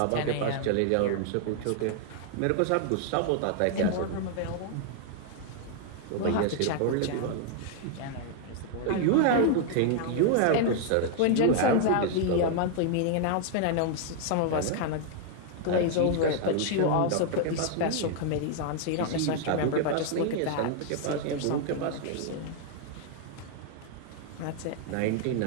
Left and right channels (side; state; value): both; different; correlation 0.00